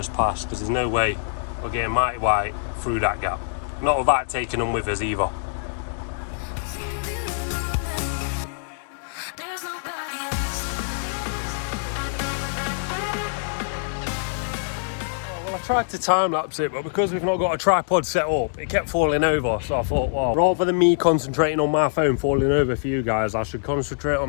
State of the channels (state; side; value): silent; right; digital silence